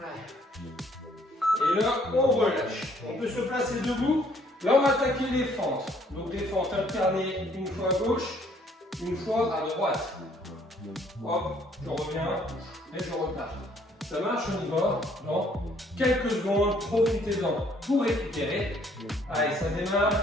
Et là on relâche, on peut se placer debout. Là, on va attaquer les fentes. Donc, les fentes alternées, une fois à gauche, une fois à droite. Hop, je reviens et je repars. Ça marche, on y va dans quelques secondes. Profitez-en pour récupérer. Allez, ça démarre.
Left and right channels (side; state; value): both; normal; correlation 0.63